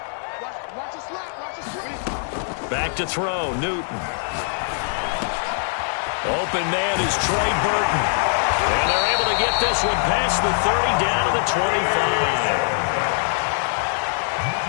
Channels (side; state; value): right; silent; 55 dB below the other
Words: Back to throw, Newton. Open man is Trey Burton. And they're able to get this one past the 30 down to the 25.